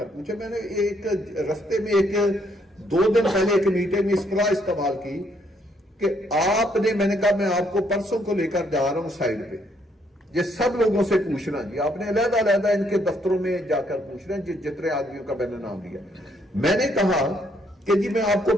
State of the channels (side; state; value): both; normal; correlation 0.71